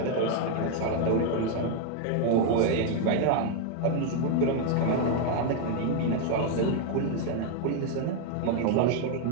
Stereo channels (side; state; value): both; different; correlation 0.01